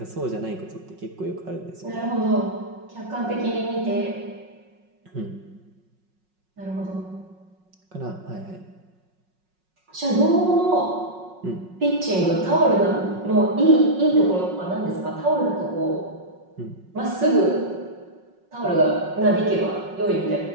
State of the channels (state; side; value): late; left; 5.4 ms